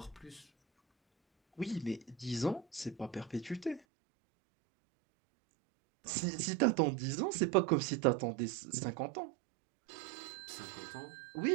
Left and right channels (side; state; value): left; drops out; at 3.8 s